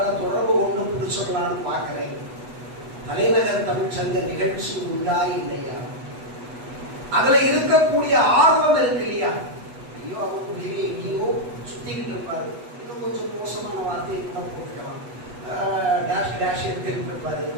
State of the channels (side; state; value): left; late; 8.1 ms